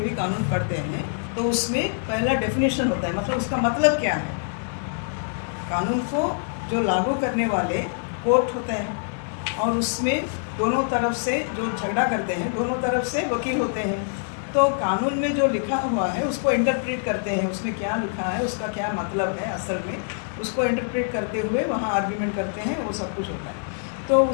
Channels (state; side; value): silent; right; digital silence